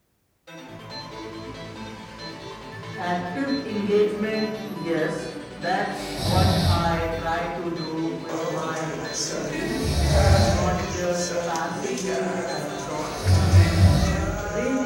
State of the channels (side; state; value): both; identical; correlation 1.00